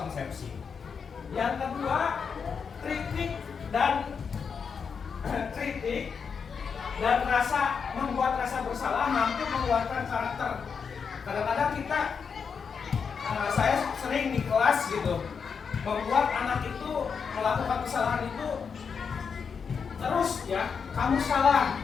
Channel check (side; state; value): right; quieter; 6.1 dB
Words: Yang kedua, kritik dan membuat rasa bersalah mampu mengeluarkan karakter. Kadang-kadang kita, saya sering di kelas gitu, membuat anak itu melakukan kesalahan itu terus ya, kamu salah,